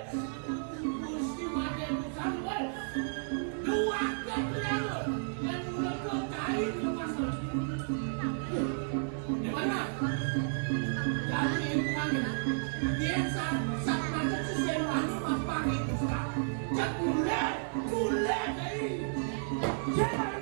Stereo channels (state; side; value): silent; left; digital silence